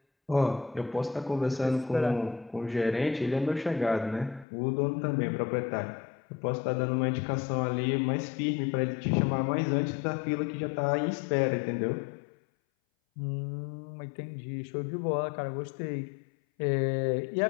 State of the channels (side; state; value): right; drops out; at 4.5 s